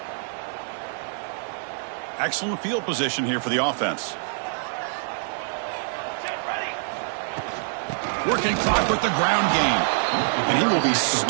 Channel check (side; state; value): left; silent; digital silence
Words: Excellent field position here for the offense. Working clock with the ground game. And he will be